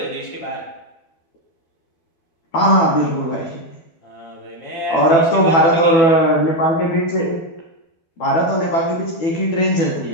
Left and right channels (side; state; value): right; late; 12 ms